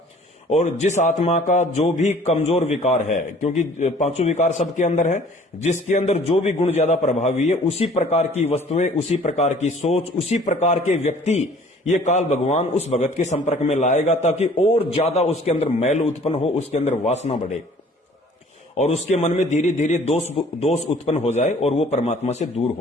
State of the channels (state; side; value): normal; both; correlation 0.53